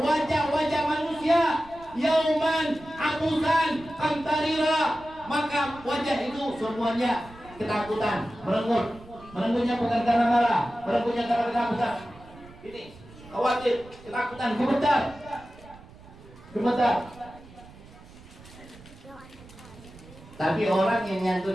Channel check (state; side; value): noise; right; rumble, 21 dB below the sound